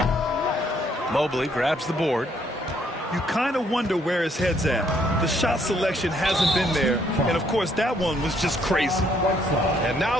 Mobley grabs the board. You kind of wonder where his head's at. The shot selection hasn't been there. And, of course, that one was just crazy. And now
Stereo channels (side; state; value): both; normal; correlation 0.68